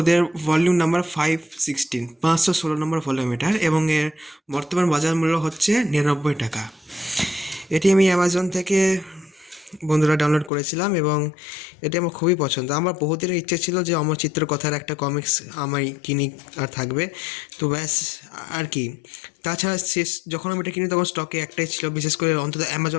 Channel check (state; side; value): drops out; right; at 10.5 s